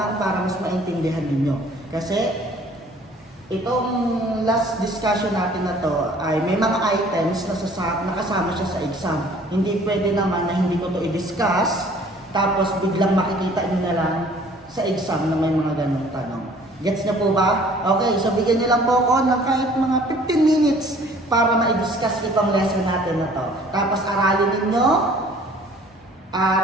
para mas maintindihan ninyo. Kasi itong last discussion natin na to ay may mga items na nakasama siya sa exam. Hindi pwede naman na hindi ko to i-discuss tapos biglang makikita niyo na lang sa exam na may mga ganong tanong. Gets niyo po ba? Okay, so bigyan niyo lang po ako ng kahit mga 15 minutes para ma-discuss itong lesson natin na to. Tapos aralin ninyo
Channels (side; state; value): both; normal; correlation 0.53